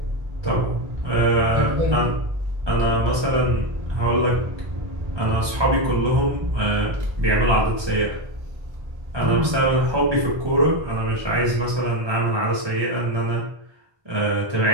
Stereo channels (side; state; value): left; late; 1.2 ms